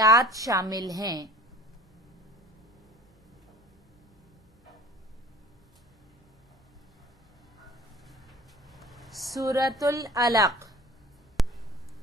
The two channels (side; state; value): both; normal; correlation 0.47